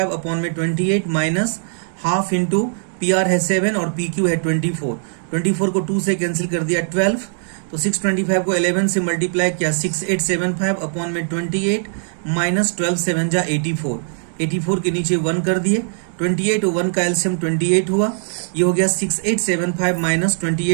अपॉन में 28 माइनस हाफ इंटू PR है 7 और PQ है 24, 24 को 2 से कैंसिल कर दिया 12, तो 625 को 11 से मल्टीप्लाई किया 6875 अपॉन में 28 माइनस 12 7 जा 84, 84 के नीचे 1 कर दिए, 28 और 1 का एलसीएम 28 हुआ, ये हो गया 6875 माइनस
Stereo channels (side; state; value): left; silent; digital silence